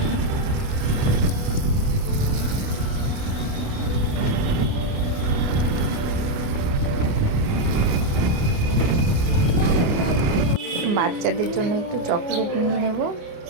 বাচ্চাদের জন্য একটু চকলেট নিয়ে নেব।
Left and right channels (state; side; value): late; left; 29 ms